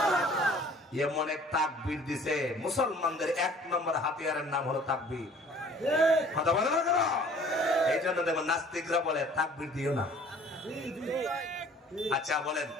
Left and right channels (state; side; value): normal; both; correlation 0.52